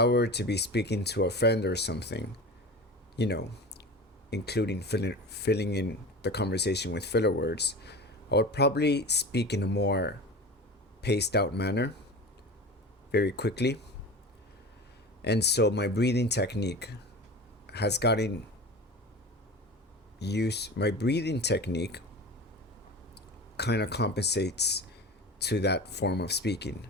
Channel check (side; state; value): both; normal; correlation 0.32